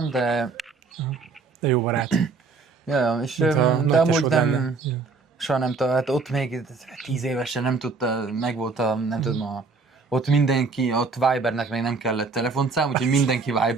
de... De jó barát. Ja, és de amúgy nem... Soha nem tudta, hát ott még 10 évesen nem tudta, megvolt nem tudom, ott mindenki, ott Vibernek még nem kellett telefonszám, úgyhogy mindenki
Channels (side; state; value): left; quieter; 4.4 dB